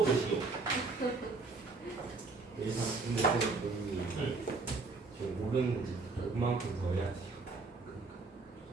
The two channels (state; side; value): quieter; left; 3.9 dB